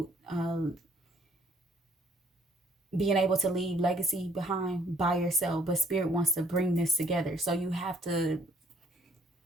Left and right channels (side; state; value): both; normal; correlation 0.63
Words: being able to leave legacy behind by yourself. But Spirit wants to bring this together. So you have to